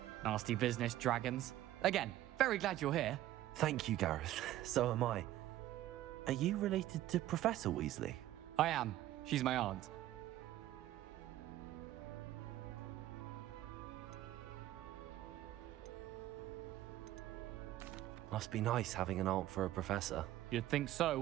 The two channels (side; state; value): left; quieter; 14.1 dB